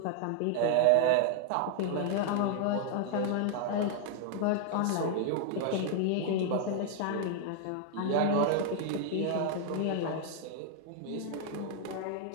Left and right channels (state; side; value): different; both; correlation 0.00